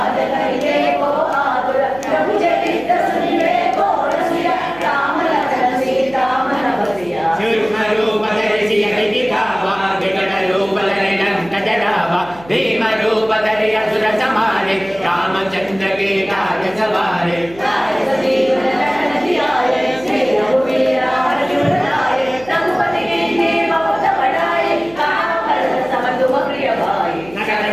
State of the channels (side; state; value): right; noise; hum, 20 dB below the sound